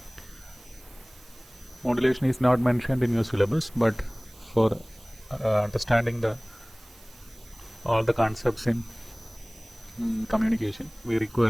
Modulation is not mentioned in your syllabus, but for understanding all the concepts in communication, we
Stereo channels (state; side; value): noise; right; hiss, 25 dB below the sound